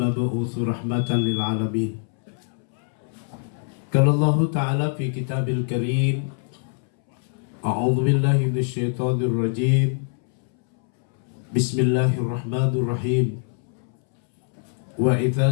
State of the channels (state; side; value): silent; right; 63 dB below the other